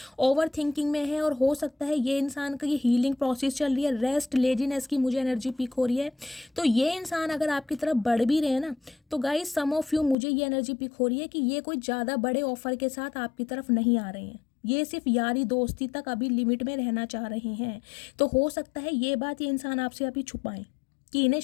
ओवर थिंकिंग में है, और हो सकता है ये इंसान का ये हीलिंग प्रोसेस चल रही है, रेस्ट लेजीनेस की मुझे एनर्जी पिक हो रही है। तो ये इंसान अगर आपकी तरफ बढ़ भी रहे हैं ना, तो गाइस सम ऑफ यू मुझे ये एनर्जी पिक हो रही है कि ये कोई ज़्यादा बड़े ऑफर के साथ आपकी तरफ नहीं आ रहे हैं, ये सिर्फ यारी दोस्ती तक अभी लिमिट में रहना चाह रहे हैं। तो हो सकता है ये बात ये इंसान आपसे अभी छुपाएं कि इन्हें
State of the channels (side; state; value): right; drops out; at 10.2 s